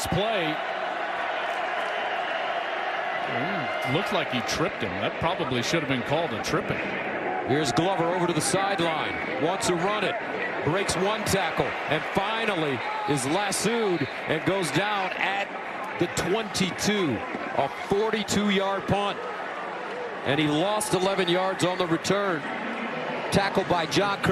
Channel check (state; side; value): identical; both; correlation 1.00